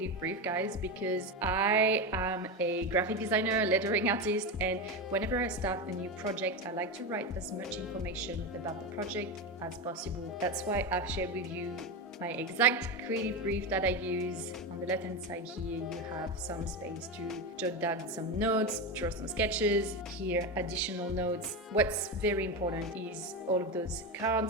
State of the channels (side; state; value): both; normal; correlation 0.16